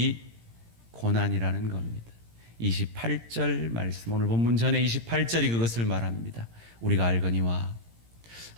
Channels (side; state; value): left; late; 17 ms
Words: 고난이라는 겁니다. 28절 말씀, 오늘 본문 전에 28절이 그것을 말합니다. 우리가 알거니와